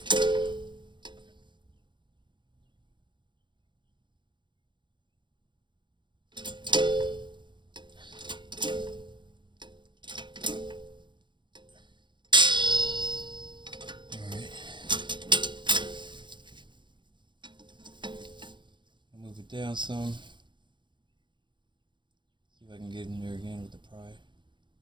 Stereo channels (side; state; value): left; late; 0.23 ms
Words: Down some. See if I can get in there again with the pry.